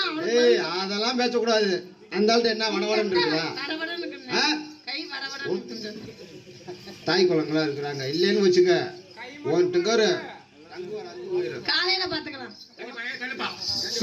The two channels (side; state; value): both; identical; correlation 1.00